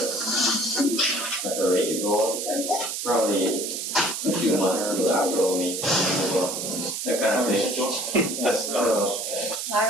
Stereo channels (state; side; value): noise; right; hiss, 4 dB below the sound